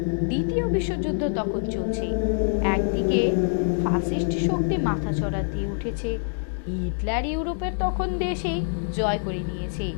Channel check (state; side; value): silent; right; 62 dB below the other